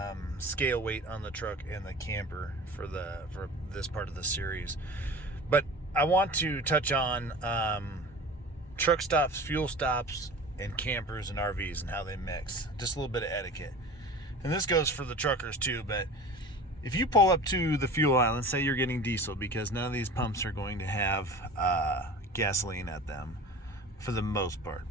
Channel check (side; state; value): both; normal; correlation 0.38